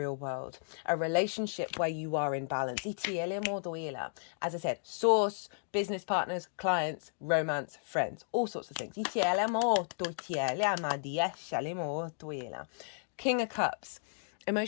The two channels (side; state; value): right; silent; digital silence